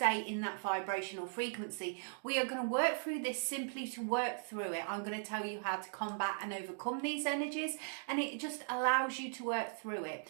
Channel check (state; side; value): silent; left; digital silence